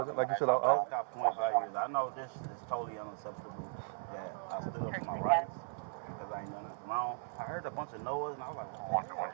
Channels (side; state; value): left; silent; 53 dB below the other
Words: Like you said, I got 25 years. I know this is totally unacceptable. That I stood up for my rights because I ain't done nothing wrong. I heard a bunch of noise and I was like, what the